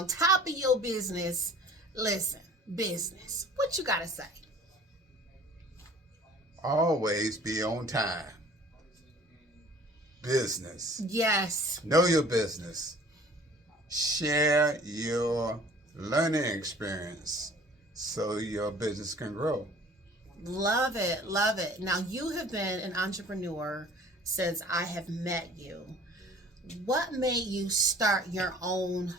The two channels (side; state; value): both; normal; correlation 0.50